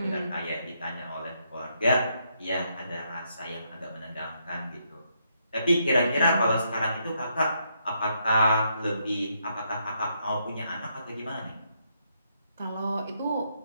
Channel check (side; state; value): both; inverted; correlation -0.77